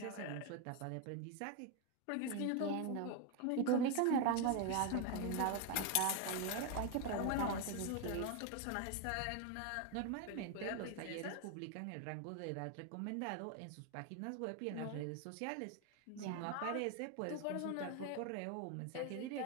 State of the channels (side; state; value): both; different; correlation 0.01